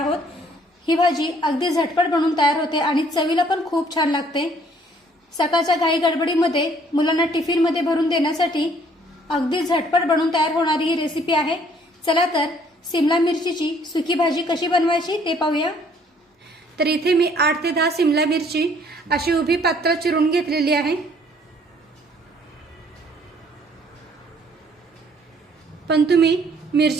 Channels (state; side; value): normal; both; correlation 0.61